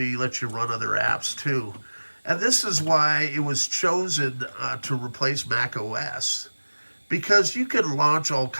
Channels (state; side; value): inverted; both; correlation -1.00